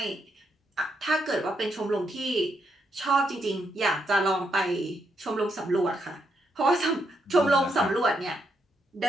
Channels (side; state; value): both; normal; correlation 0.79